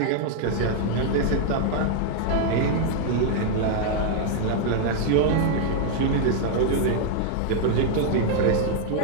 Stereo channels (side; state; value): both; different; correlation 0.00